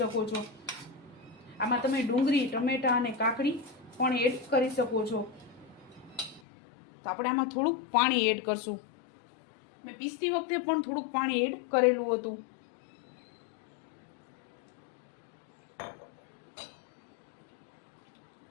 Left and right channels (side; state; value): right; drops out; at 6.4 s